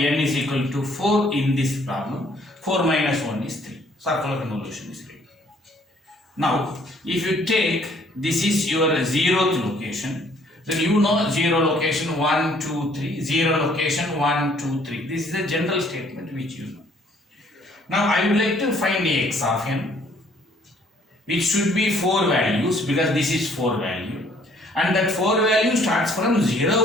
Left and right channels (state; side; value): normal; both; correlation 0.62